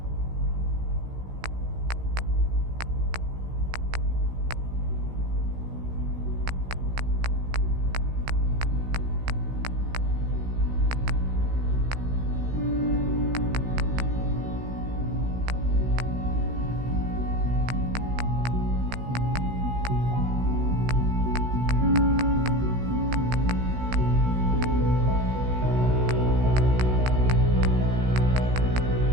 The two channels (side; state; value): left; late; 16 ms